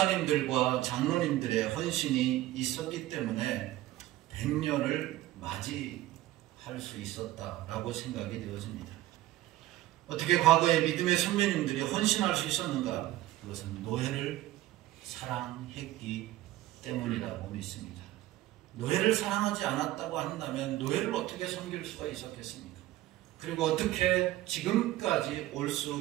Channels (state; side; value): quieter; left; 15.7 dB